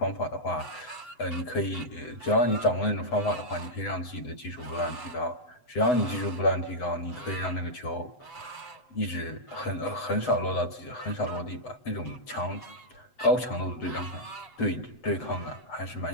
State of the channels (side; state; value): right; late; 7.9 ms